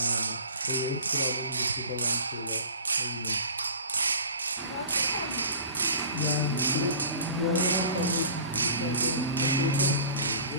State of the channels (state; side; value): inverted; both; correlation -0.42